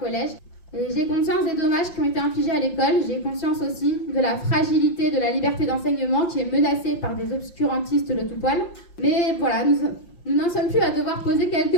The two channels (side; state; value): right; late; 5.7 ms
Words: Et j'ai conscience des dommages qui ont été infligés à l'école. J'ai conscience aussi de la fragilité de la liberté d'enseignement qui est menacée par des obscurantistes de tout poil. Mais voilà, nous n'en sommes plus à devoir poser